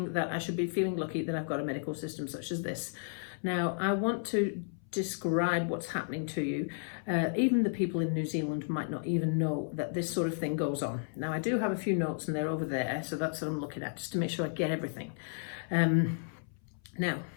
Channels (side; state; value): right; silent; 56 dB below the other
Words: that I should be feeling lucky that I've got a medical system such as this. Now, I want to describe what's happening to you. Even the people in New Zealand might not even know that this sort of thing goes on. Now, I do have a few notes and they're over there, so that's what I'm looking at, just to make sure I get everything. Now,